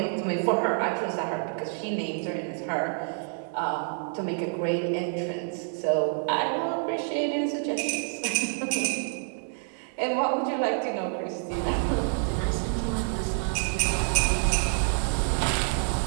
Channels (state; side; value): silent; left; 60 dB below the other